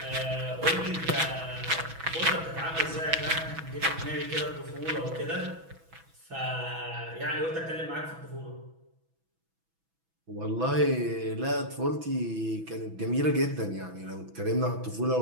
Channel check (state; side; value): late; left; 6.1 ms